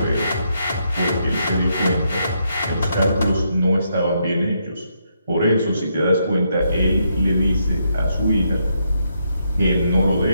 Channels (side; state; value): both; inverted; correlation -0.78